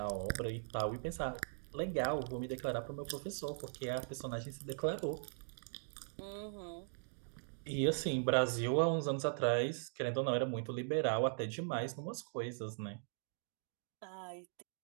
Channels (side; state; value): left; silent; digital silence